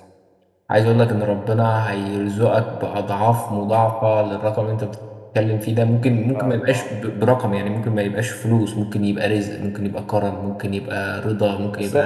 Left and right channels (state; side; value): identical; both; correlation 1.00